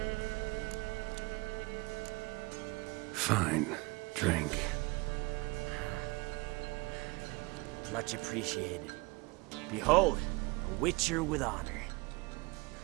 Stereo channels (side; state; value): left; quieter; 25.1 dB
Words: Fine. Drink. Much appreciated. Behold, a Witcher with honor.